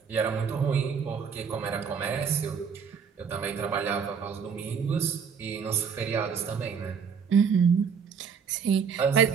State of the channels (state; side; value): quieter; left; 6.5 dB